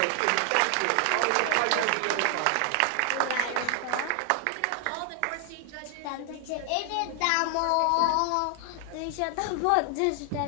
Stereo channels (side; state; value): both; different; correlation 0.00